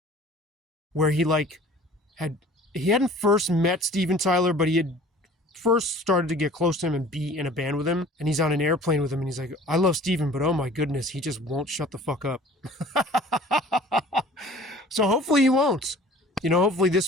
where he hadn't first met Steven Tyler, but he had first started to get close to him and be in a band with him. And he's on an airplane with him and he's like, I love Steven, but oh my goodness, he just won't shut the fuck up. So hopefully he won't. Hopefully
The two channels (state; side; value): normal; both; correlation 0.47